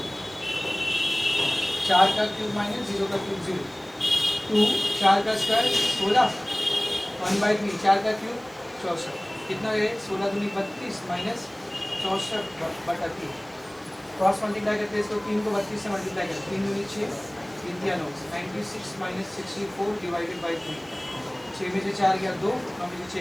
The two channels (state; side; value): noise; right; hiss, 27 dB below the sound